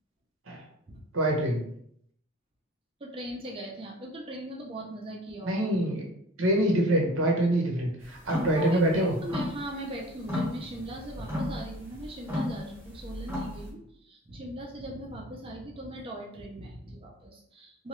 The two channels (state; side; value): normal; both; correlation 0.44